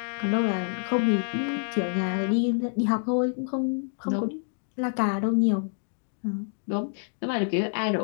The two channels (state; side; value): silent; right; digital silence